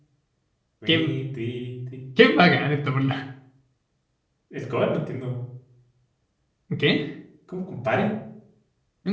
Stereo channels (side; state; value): both; identical; correlation 1.00